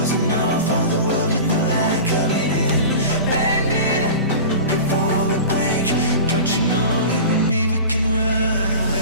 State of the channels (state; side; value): inverted; both; correlation -0.34